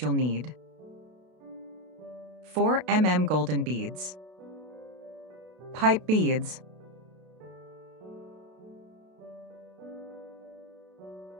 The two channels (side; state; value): left; late; 32 ms